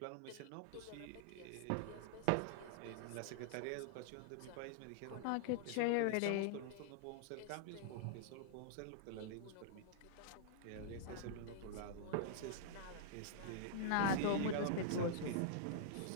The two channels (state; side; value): different; both; correlation -0.01